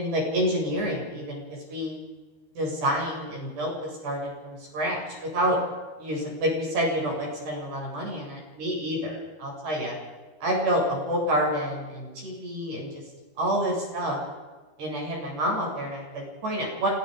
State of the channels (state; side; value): late; left; 13 ms